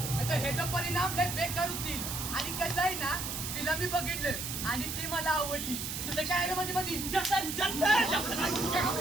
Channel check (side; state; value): right; noise; hiss, 4 dB below the sound